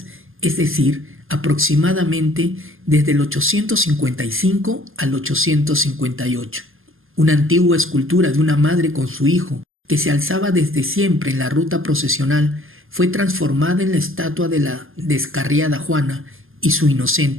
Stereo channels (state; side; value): late; left; 0.59 ms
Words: es decir, aproximadamente desde el 855 al 858. Una antigua escultura de una madre con su hijo, que se alzaba desde siempre en la ruta procesional, fue transformada en la estatua de la descarriada Juana y su